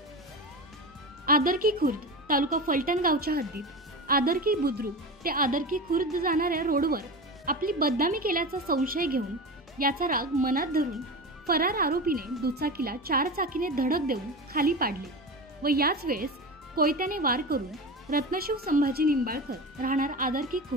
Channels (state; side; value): normal; both; correlation 0.26